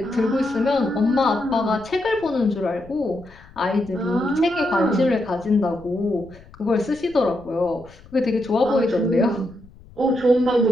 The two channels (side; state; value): left; noise; rumble, 23 dB below the sound